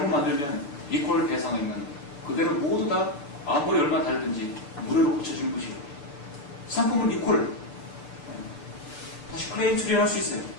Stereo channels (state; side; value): late; right; 6.8 ms